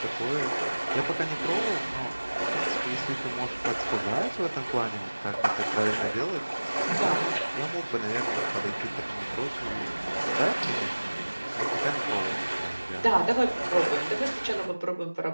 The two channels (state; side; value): inverted; both; correlation -1.00